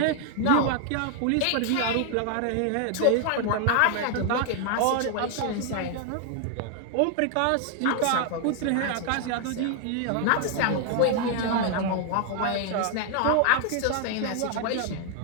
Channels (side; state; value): both; different; correlation 0.00